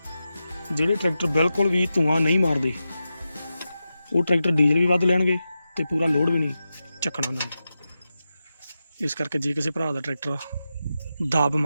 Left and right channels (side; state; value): both; inverted; correlation -0.91